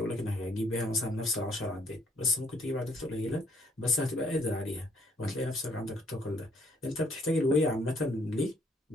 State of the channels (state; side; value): normal; both; correlation 0.65